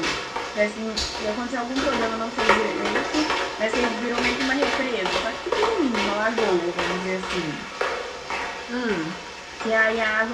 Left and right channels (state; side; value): identical; both; correlation 1.00